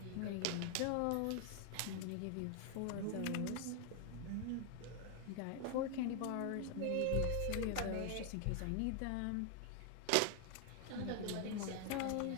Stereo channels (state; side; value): different; both; correlation 0.00